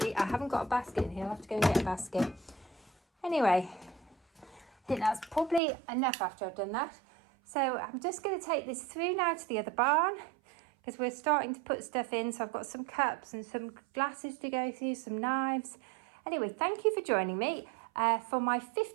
haven't got a basket in here. I'll have to go and get a basket. Anyway, I think that's probably enough after I've done that. So I'm just going to take this through now to the other barn, because we're starting to put stuff in. So I've got some cups and some glasses to go through, some knives. Anyway, thank you for joining me for my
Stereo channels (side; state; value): left; drops out; at 5.6 s